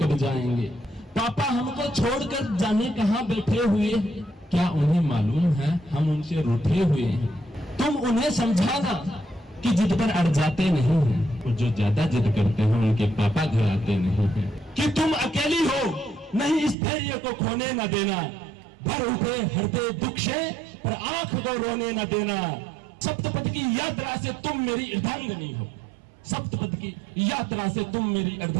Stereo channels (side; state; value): left; drops out; at 16.8 s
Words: जाएंगे। पापा हमको छोड़कर जाने कहाँ बैठे हुए हैं, क्या उन्हें मालूम है हम उनसे रूठे हुए हैं। तुम उन्हें समझाना कि जिद पर अड़ जाते नहीं हैं, और जो ज्यादा जिद करते हैं उनके पापा घर आते नहीं हैं। कि तुम अकेली हो नहीं इस धैर्य को खोने न देना, भर उठे हृदय दुख से पर आंख को रोने न देना। सप्तपद की यात्रा से तुम मेरी अर्धांगिनी हो, सप्तपद की यात्रा से तुम मेरी